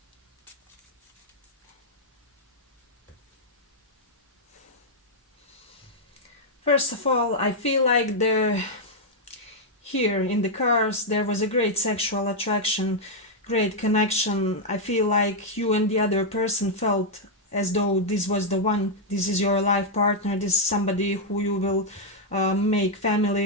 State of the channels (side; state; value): both; normal; correlation -0.03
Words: First of all, I feel like here in the cards there was a great sexual attraction, great connection. I feel like you and the other person felt as though this was the one, this is your life partner, this is somebody who you will make